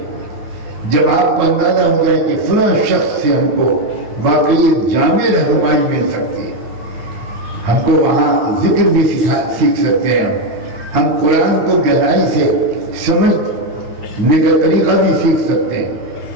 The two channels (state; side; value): late; left; 9.8 ms